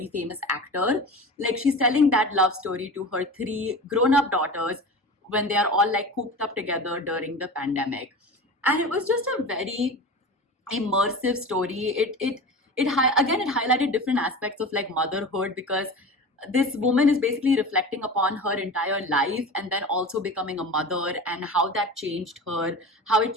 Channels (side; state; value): both; normal; correlation 0.32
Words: famous actor. Like she's telling that love story to her three grown-up daughters when they are all like cooped up together during the pandemic. And it was just a very immersive story. Again, it highlighted different aspects of like motherhood because this woman is basically reflecting upon her entire life and then also becoming a mother and how that changed her, how it